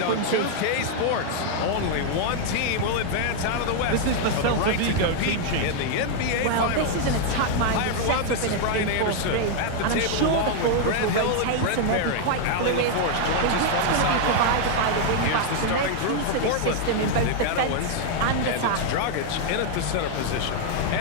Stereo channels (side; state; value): both; different; correlation 0.00